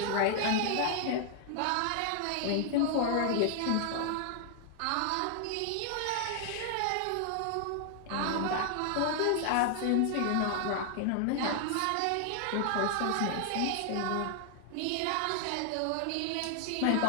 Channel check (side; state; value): both; different; correlation 0.00